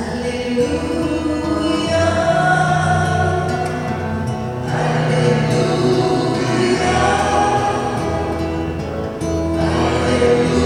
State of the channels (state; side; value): identical; both; correlation 1.00